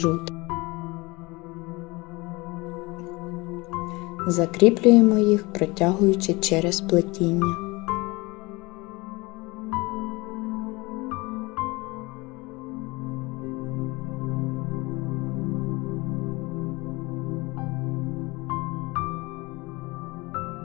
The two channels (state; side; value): quieter; right; 23.9 dB